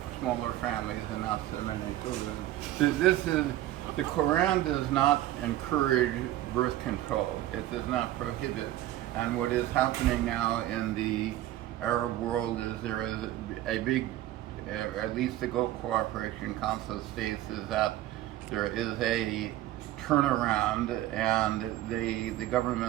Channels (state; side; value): quieter; left; 14.3 dB